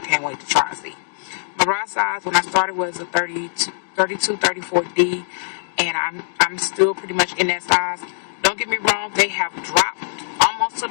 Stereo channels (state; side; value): silent; right; digital silence